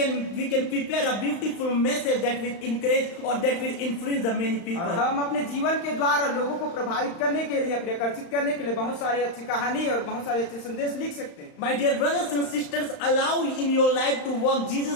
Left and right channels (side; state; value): right; late; 35 ms